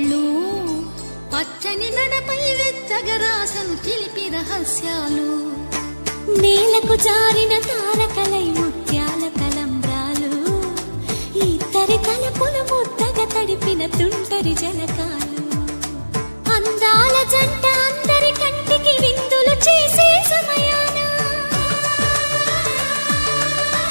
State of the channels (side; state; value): both; inverted; correlation -1.00